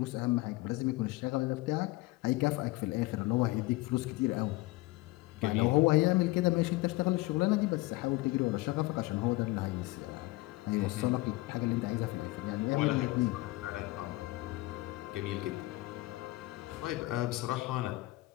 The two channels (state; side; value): quieter; right; 20.5 dB